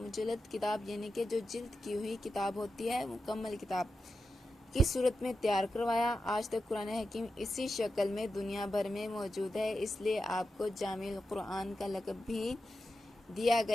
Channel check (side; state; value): both; normal; correlation 0.90